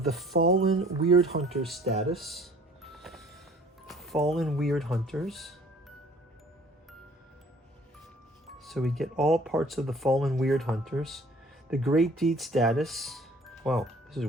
the Fallen Weird Hunter status. Fallen Weird Hunters. So we get all parts of the Fallen Weird Hunters. The Great Deed status. Wow, this is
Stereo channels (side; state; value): both; normal; correlation 0.53